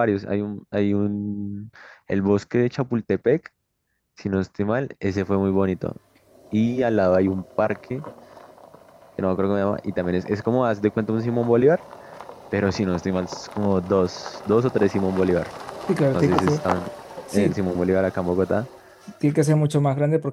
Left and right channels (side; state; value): both; identical; correlation 1.00